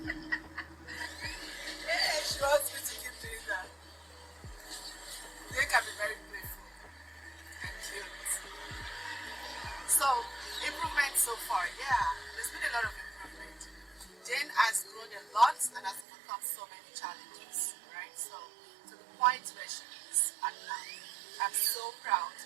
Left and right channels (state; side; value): drops out; left; at 16.1 s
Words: Yeah, she wants me to keep doing that. They can be very playful and cute. So, improvement so far, yeah, there's been a lot of improvement. Jane has grown a lot and has overcome so many challenges, right? So, to the point where she is at now, I'm so proud